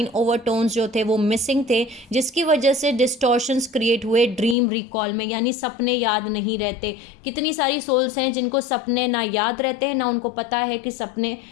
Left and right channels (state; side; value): drops out; right; at 4.5 s